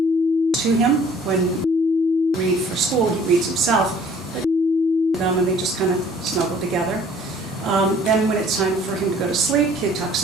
to him when he reads for school. He reads himself, but them and they just kind of snuggle together. Then when it's time for him to go to sleep, he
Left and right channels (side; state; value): both; normal; correlation 0.54